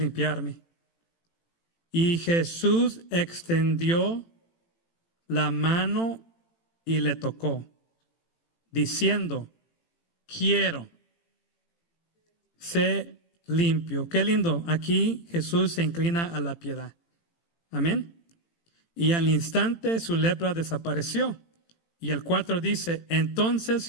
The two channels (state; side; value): late; right; 18 ms